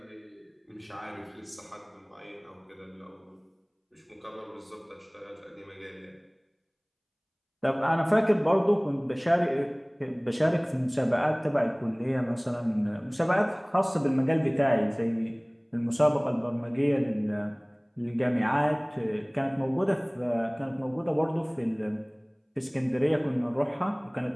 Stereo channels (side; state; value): both; identical; correlation 1.00